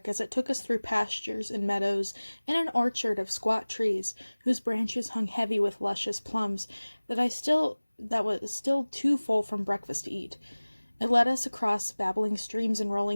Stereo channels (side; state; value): both; inverted; correlation -1.00